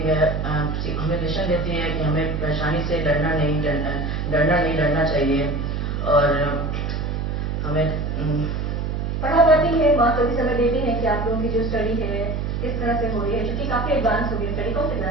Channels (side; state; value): right; noise; hum, 2 dB below the sound